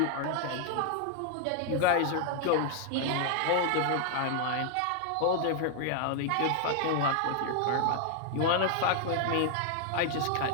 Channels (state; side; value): different; both; correlation 0.00